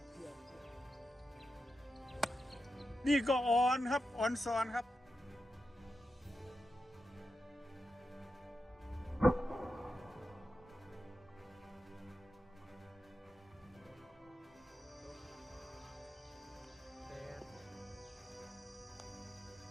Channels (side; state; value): both; normal; correlation 0.89